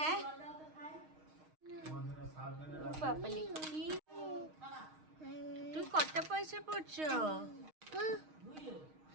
বাবালি, কি তুমি কত পয়সা পড়ছো?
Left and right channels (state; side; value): late; left; 6.4 ms